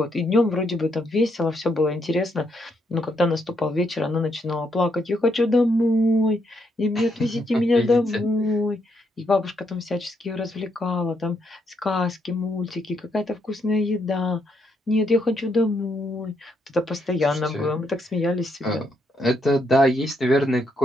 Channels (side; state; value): both; normal; correlation 0.76